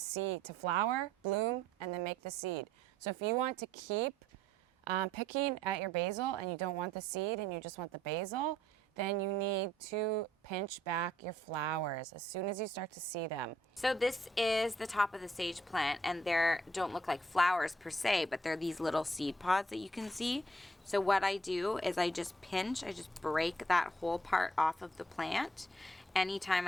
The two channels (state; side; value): normal; both; correlation 0.66